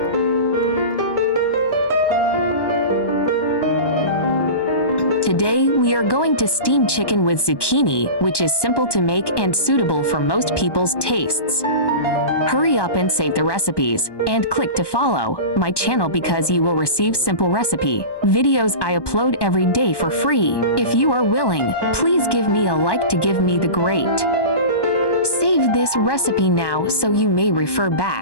Today we are going to steam chicken with zucchini, which is simple to make and suitable for most people's tastes. Hurry up and save the recipes, and click to follow my channel because you will receive simple recipe videos I upload every day for free. If you are willing, please give me a like to give me the great. Save this recipe now so you may refer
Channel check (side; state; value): right; late; 1.1 ms